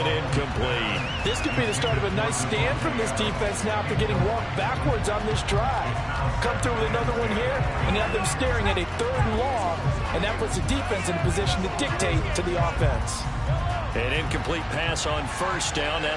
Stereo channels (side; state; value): both; identical; correlation 1.00